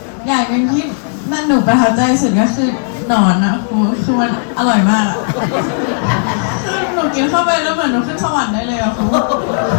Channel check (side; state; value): right; silent; digital silence